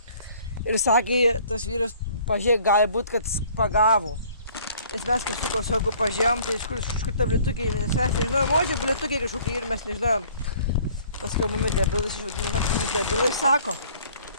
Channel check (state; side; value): inverted; both; correlation -0.55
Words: Ir sakė, tas vyras pažiūrėk, gali būt, kad pagavo. Nes mes kažkokio saugu pažiūrėjom, tai iš kur ta blėtukiai, nes mes nežinojom, o čia blėtukiai kažkokie ir mes nežinojom. Paskui mumis debilais išvadino, mumis debilai sako,